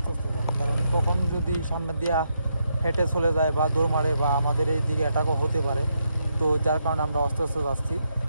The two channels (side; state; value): both; inverted; correlation -0.80